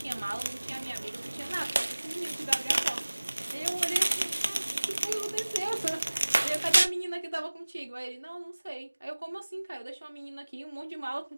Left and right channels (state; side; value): inverted; both; correlation -1.00